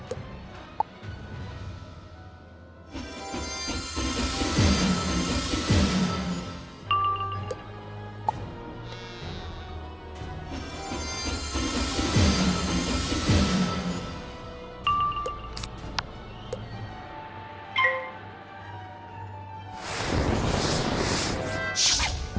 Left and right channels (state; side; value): identical; both; correlation 1.00